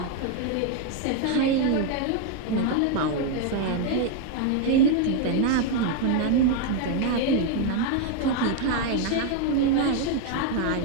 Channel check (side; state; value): both; different; correlation 0.01